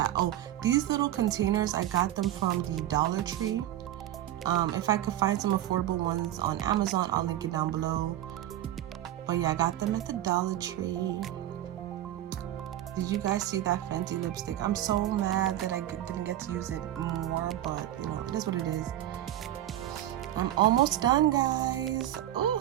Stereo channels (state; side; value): quieter; left; 13.0 dB